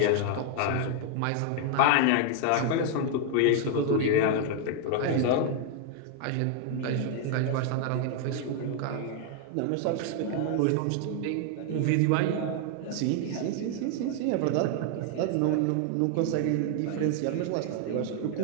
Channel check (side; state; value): both; different; correlation 0.00